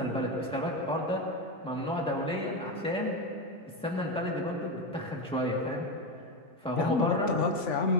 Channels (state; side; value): normal; both; correlation 0.14